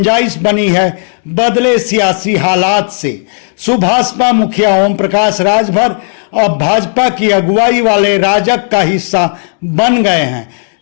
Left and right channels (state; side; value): silent; right; 68 dB below the other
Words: बनी है बदले सियासी हालात से। सुभाषपा मुखिया ओम प्रकाश राजभर अब भाजपा की अगुवाई वाले राजग का हिस्सा बन गए हैं।